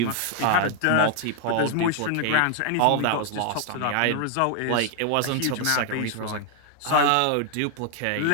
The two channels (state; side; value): different; both; correlation 0.00